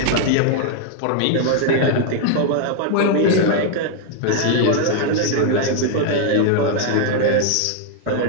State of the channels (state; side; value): different; both; correlation 0.00